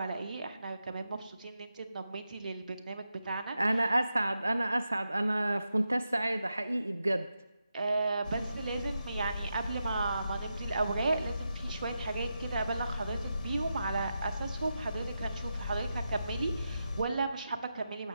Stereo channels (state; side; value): inverted; both; correlation -0.87